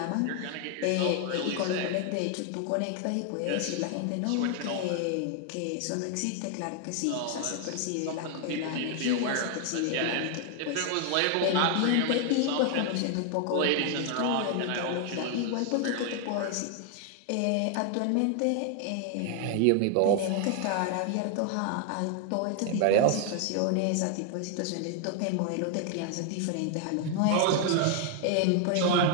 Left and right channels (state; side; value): different; both; correlation 0.00